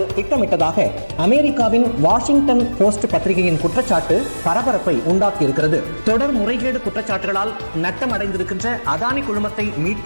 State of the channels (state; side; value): inverted; both; correlation -1.00